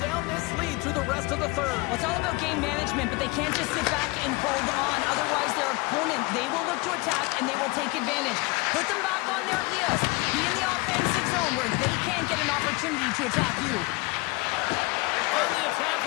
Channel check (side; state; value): right; quieter; 24.9 dB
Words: down this lead through the rest of the third. Well, it's all about game management, but they can't just sit back and hold on. Otherwise, their opponent, they will look to attack, and they will take advantage. Put them back on their heels. Be in the offensive zone where they can't get an opportunity to attack you. On the attack